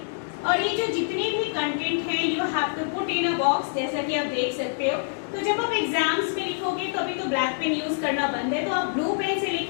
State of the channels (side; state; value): right; silent; digital silence